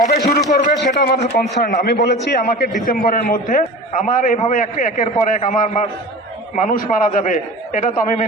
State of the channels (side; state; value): both; normal; correlation 0.35